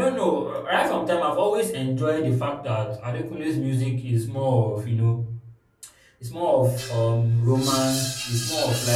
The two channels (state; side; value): identical; both; correlation 1.00